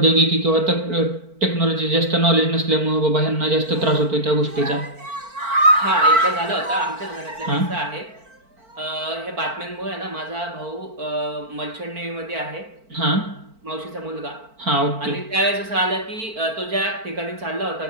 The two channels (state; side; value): late; left; 4.5 ms